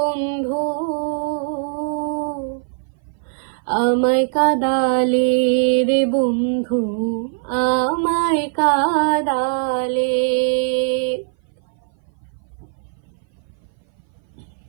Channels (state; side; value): silent; left; 58 dB below the other